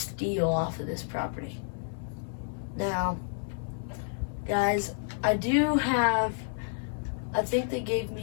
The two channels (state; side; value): silent; right; 58 dB below the other